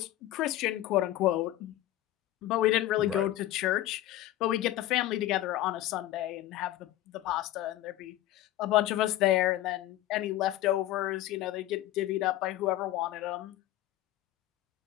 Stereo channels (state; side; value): quieter; right; 14.5 dB